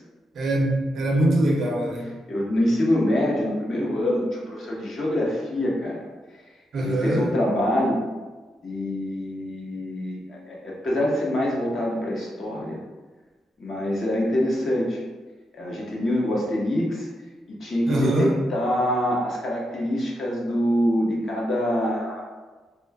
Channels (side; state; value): both; normal; correlation 0.84